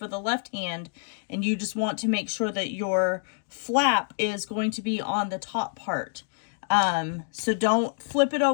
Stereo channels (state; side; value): silent; right; digital silence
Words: the left hand, and you just want to make sure that your flap is going to be on the top part. So don't flip it